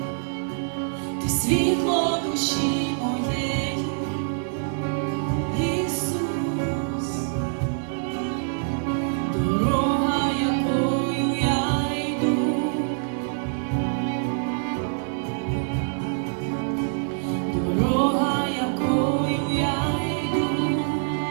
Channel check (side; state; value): left; silent; digital silence